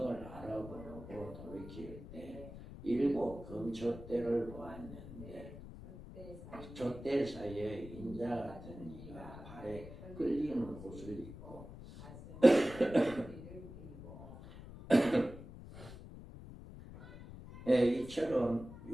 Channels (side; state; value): left; noise; rumble, 14 dB below the sound